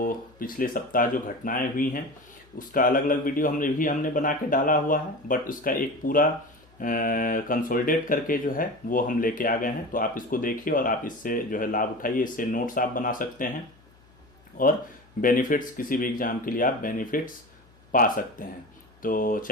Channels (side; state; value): left; noise; hum, 29 dB below the sound